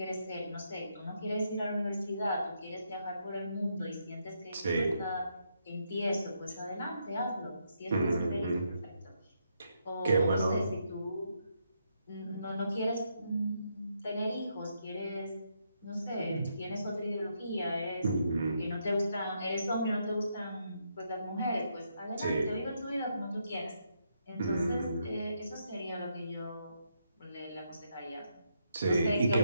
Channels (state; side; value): inverted; both; correlation -0.78